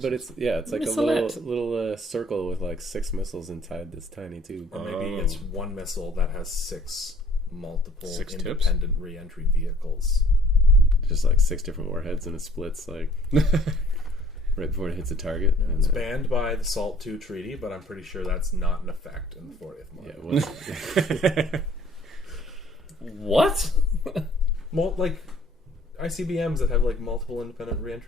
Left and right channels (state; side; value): normal; both; correlation 0.57